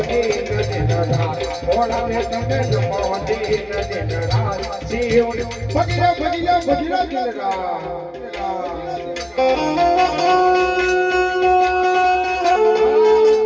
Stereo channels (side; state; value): both; identical; correlation 1.00